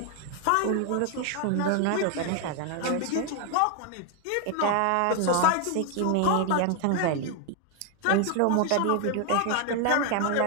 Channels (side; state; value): both; different; correlation 0.01